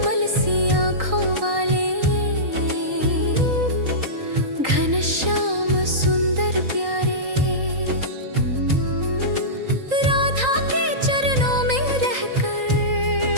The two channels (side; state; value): left; late; 3.8 ms